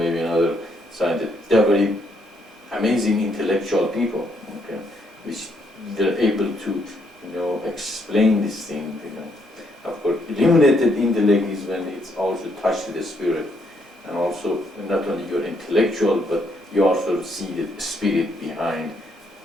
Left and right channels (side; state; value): both; normal; correlation 0.73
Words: another scientist. They're very amazing intellectual people, which they're able to, explain this thing, Of course, illuminated intellect is when it's also touched the spirit, and also not only your intellectual, but you also see the spirit behind,